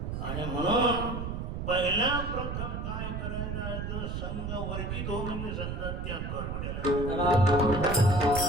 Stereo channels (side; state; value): right; noise; rumble, 4 dB below the sound